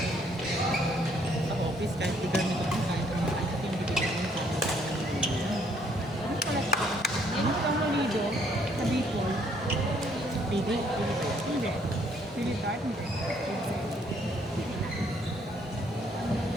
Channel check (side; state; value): both; normal; correlation 0.66